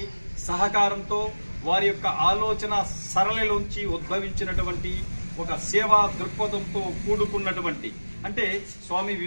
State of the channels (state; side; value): inverted; both; correlation -1.00